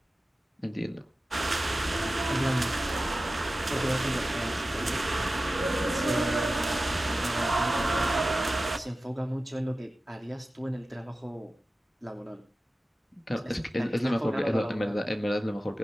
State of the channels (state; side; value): normal; both; correlation 0.95